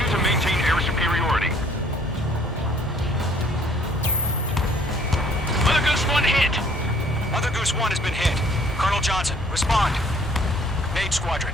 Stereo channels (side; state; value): both; normal; correlation 0.60